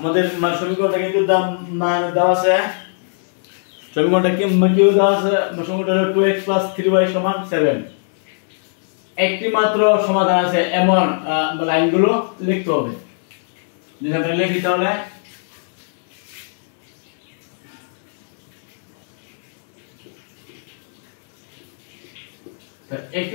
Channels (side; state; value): right; silent; digital silence